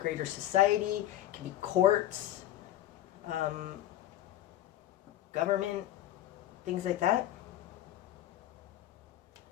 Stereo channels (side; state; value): right; quieter; 13.2 dB